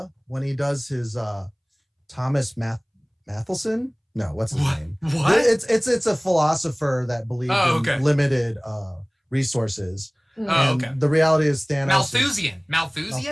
when he does his Thomas Mathelson. No, what's his name? What? It's a philosopher that believed in limited resources. The reality is Thanos.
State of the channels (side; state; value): both; identical; correlation 1.00